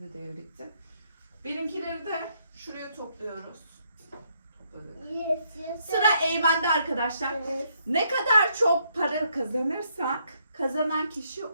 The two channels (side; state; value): both; inverted; correlation -0.72